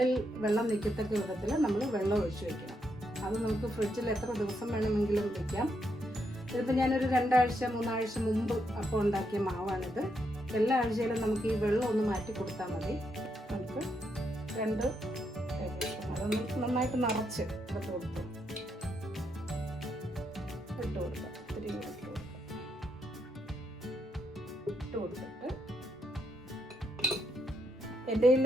വെള്ളം നിൽക്കത്തക്ക വിധത്തിൽ നമ്മൾ വെള്ളം ഒഴിച്ച് വയ്ക്കണം. അത് നമുക്ക് ഫ്രിഡ്ജിൽ എത്ര ദിവസം വേണമെങ്കിലും വയ്ക്കാം. ഇതിപ്പോൾ ഞാനൊരു 2 ആഴ്ച 3 ആഴ്ച മുമ്പ് അപ്പം ഉണ്ടാക്കിയ മാവാണിത്. എല്ലാ ആഴ്ചയിലും നമുക്ക് ഈ വെള്ളം ഒന്ന് മാറ്റി കൊടുത്താൽ മതി. നമുക്ക് 2 ടേബിൾ സ്പൂൺ അതൊന്ന് നന്നായിട്ട് നിറച്ച് ഇട്ട് കൊടുക്കാം. ഇട്ട് കൊടുത്തിട്ട് എൻ്റെ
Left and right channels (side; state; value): both; normal; correlation 0.79